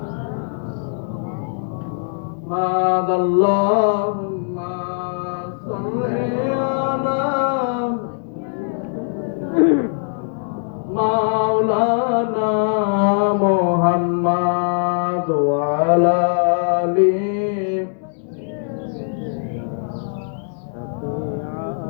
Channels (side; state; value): right; silent; digital silence